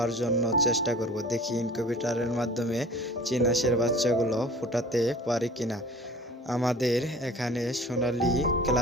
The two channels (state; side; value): normal; both; correlation 0.44